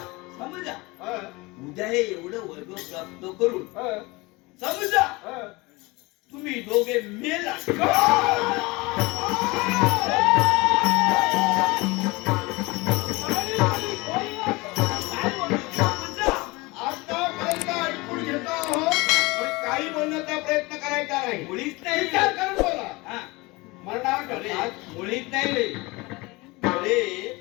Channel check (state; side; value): quieter; right; 23.7 dB